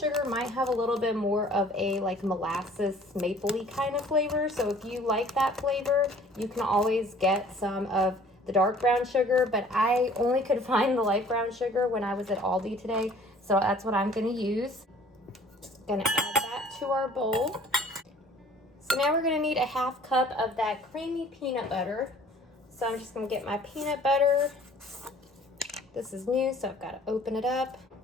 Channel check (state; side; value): normal; both; correlation 0.52